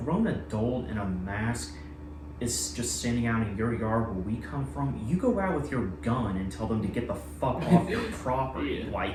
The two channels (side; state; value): both; identical; correlation 1.00